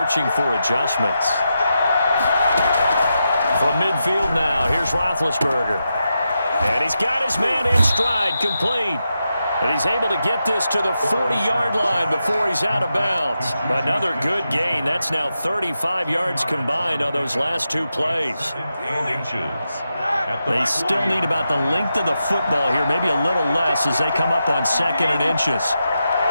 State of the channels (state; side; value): inverted; both; correlation -0.87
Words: for adjustments. From midfield now, here's Roethlisberger. And he's got his man in stride, complete. And he's able to get this to the 40-yard line before he's out of bounds. Another good gain. That's now 35 yards combined on those last 2 plays. They still need about the length of the football here, maybe a little less as they come up on 2nd and inches.